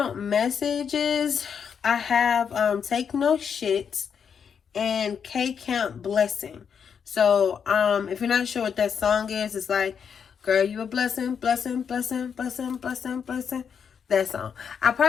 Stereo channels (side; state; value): right; quieter; 7.1 dB